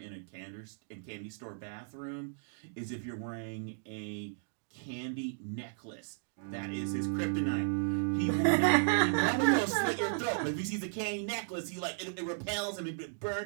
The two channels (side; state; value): left; silent; digital silence